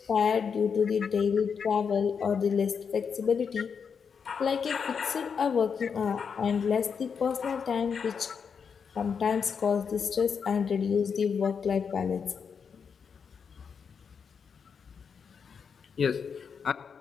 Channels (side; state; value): right; quieter; 6.3 dB